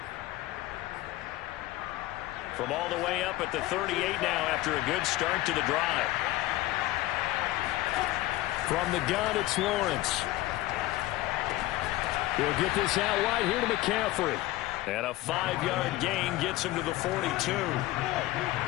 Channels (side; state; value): right; quieter; 17.0 dB